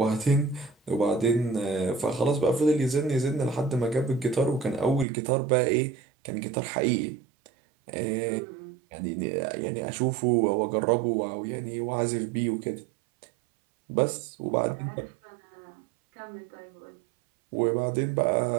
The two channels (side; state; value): left; drops out; at 5.1 s